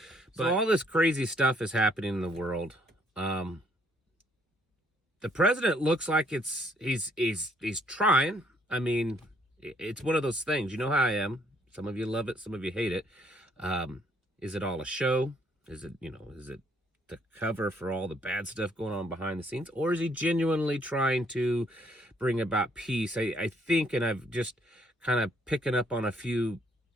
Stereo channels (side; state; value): both; normal; correlation 0.67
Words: But all this crazy stuff is happening in the world. The president looks like he's trying. I mean, it's one of those things. You know how I am. Some of you love it, some of you hate it. Is it all a show? Is it the cover for all the bad stuff going on behind the scenes? Or is he genuinely trying to bring about peace? I think, and I've just kind of picking up on a few